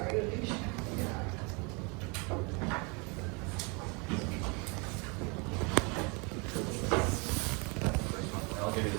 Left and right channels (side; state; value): left; quieter; 31.0 dB